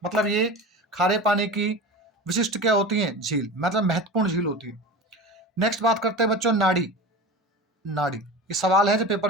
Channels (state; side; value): normal; both; correlation 0.31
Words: मतलब ये खारे पानी की विशिष्ट क्या होती है? झील, मतलब महत्वपूर्ण झील होती है। नेक्स्ट बात करते हैं बच्चों नाड़ी। नाड़ी ये सवाल है जो पेपर